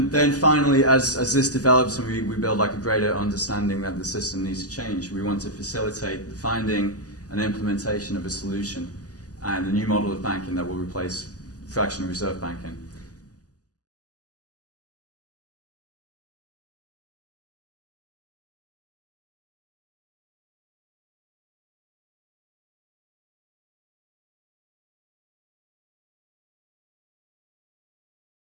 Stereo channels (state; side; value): late; right; 0.67 ms